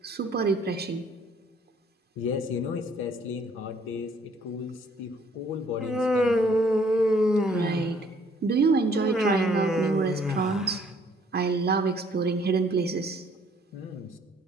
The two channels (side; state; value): both; normal; correlation 0.62